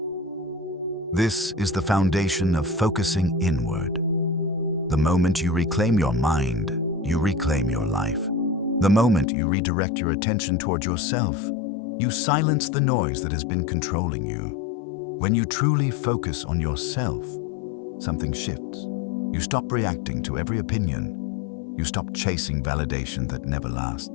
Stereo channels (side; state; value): right; drops out; at 9.2 s